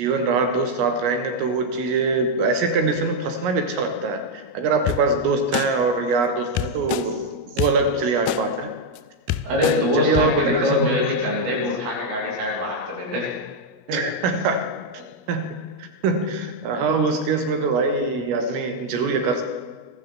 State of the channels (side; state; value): left; late; 17 ms